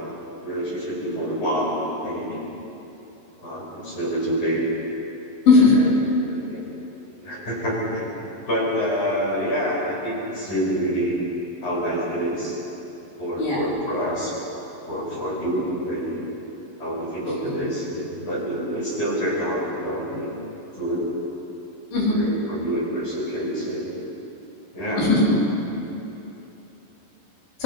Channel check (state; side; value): late; right; 11 ms